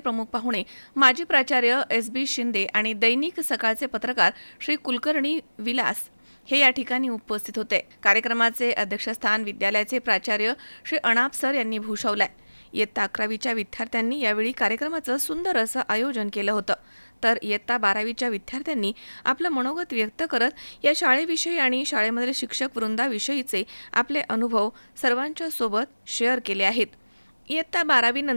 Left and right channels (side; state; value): both; inverted; correlation -1.00